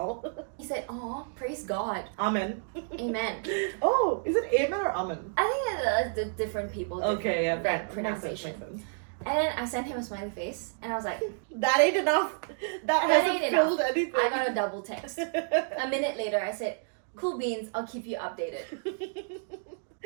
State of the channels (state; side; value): silent; left; digital silence